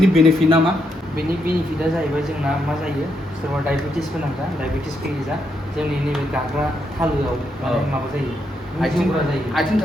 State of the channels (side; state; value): both; normal; correlation 0.80